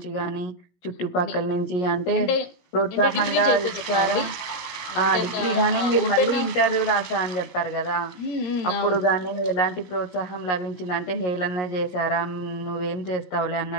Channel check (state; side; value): late; right; 16 ms